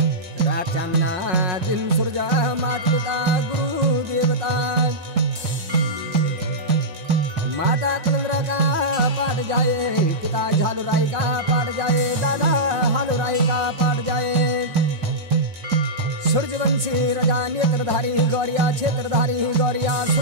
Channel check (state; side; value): late; left; 5.5 ms